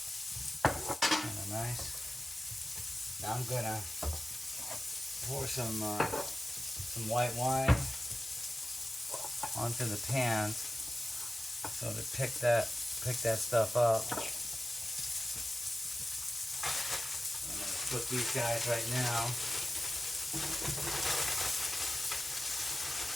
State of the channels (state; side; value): normal; both; correlation 0.96